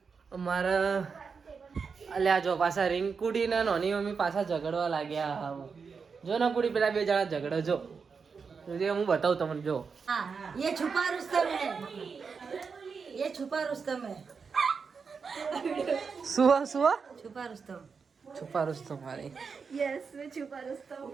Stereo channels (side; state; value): left; quieter; 5.5 dB